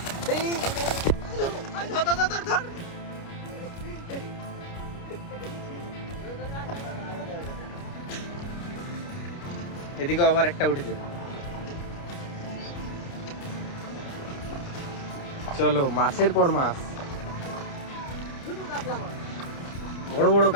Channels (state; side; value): late; right; 29 ms